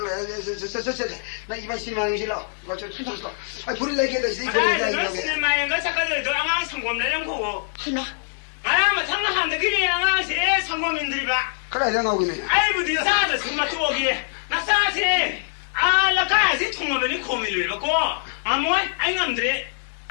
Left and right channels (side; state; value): right; silent; digital silence